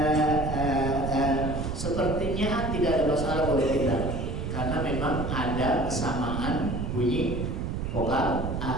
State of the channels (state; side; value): noise; right; rumble, 3 dB below the sound